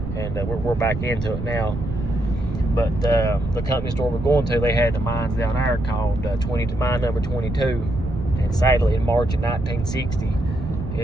And we're back into it now. But the company store we're going to, they had the mines down there called mine number 22. And sadly, in March of 1960,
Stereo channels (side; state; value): right; noise; rumble, 6 dB below the sound